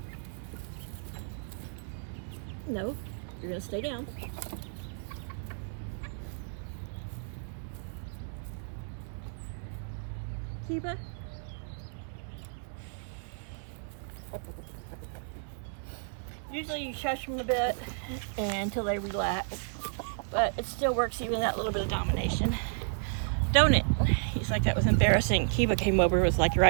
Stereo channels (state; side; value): silent; left; digital silence